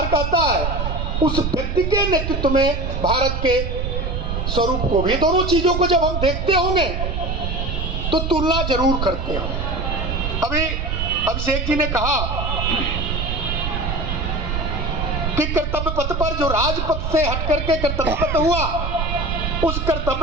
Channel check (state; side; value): noise; right; rumble, 2 dB below the sound